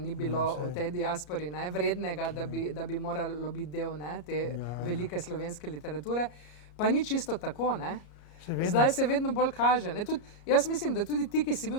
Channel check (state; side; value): late; right; 34 ms